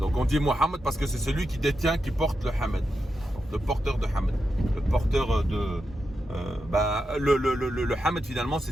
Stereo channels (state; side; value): normal; both; correlation 0.88